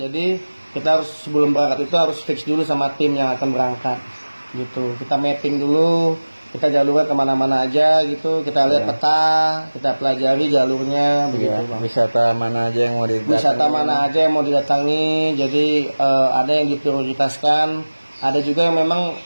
kita harus sebelum berangkat itu harus fix dulu sama tim yang akan berangkat gitu. Kita mapping dulu, kita jalurnya kemana-mana aja gitu, kita lihat peta, kita pelajari jalurnya begitu bang. Wisata mana aja yang mau didatangi. Jadi ada yang diprioritaskan, ada juga yang memang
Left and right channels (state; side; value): inverted; both; correlation -1.00